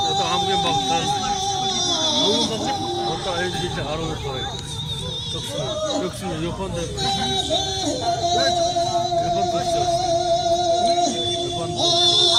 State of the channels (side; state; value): both; identical; correlation 1.00